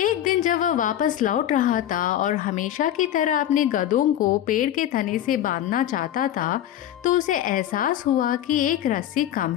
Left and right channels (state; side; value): quieter; right; 11.6 dB